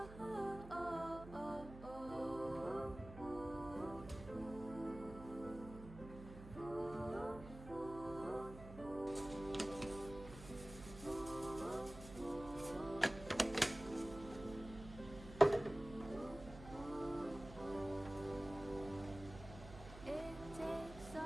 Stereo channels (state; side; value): noise; right; hum, 13 dB below the sound